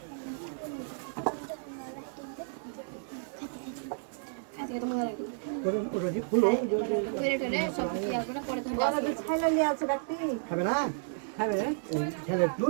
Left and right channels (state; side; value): silent; left; digital silence